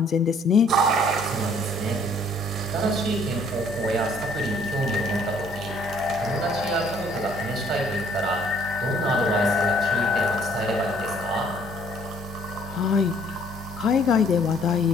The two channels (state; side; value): normal; both; correlation 0.60